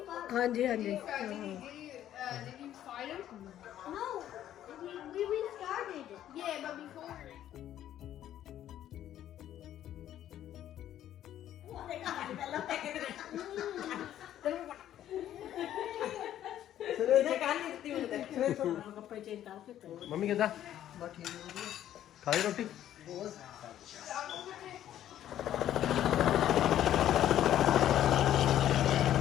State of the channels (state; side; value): quieter; right; 11.7 dB